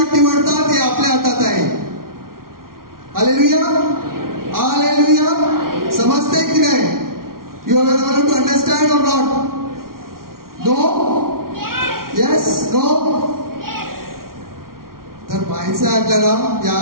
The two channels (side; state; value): left; late; 0.93 ms